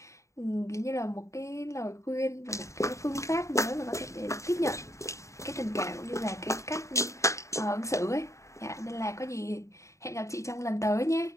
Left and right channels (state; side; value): late; right; 0.15 ms